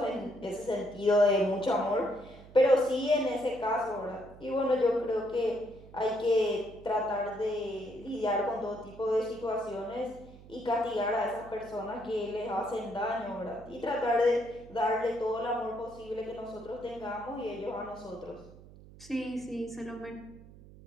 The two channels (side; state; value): right; noise; hum, 20 dB below the sound